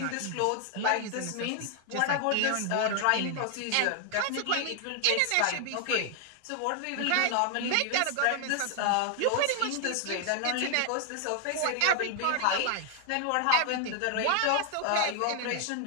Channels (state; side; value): different; both; correlation 0.00